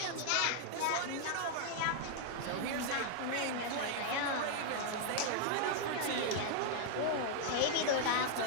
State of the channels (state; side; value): different; both; correlation 0.00